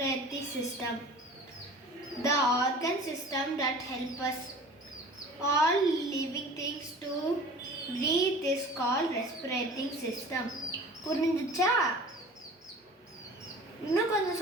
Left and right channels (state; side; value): normal; both; correlation 0.43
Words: system? The organ system that help us all living things to breathe is called respiratory system. புரிஞ்சுச்சா? இன்னும் கொஞ்சம்